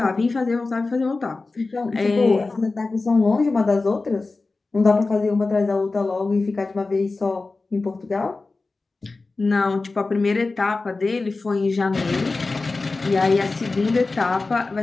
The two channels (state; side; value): quieter; right; 3.6 dB